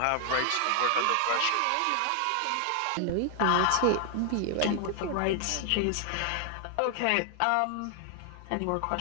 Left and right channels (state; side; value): different; both; correlation 0.00